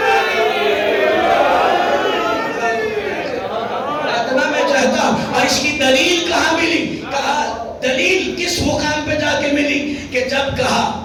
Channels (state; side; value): identical; both; correlation 1.00